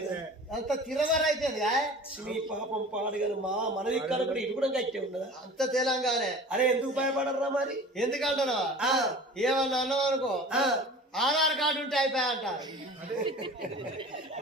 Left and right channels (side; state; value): both; normal; correlation 0.40